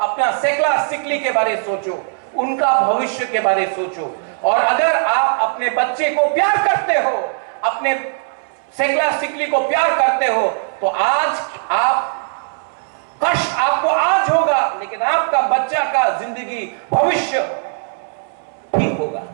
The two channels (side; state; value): left; silent; 65 dB below the other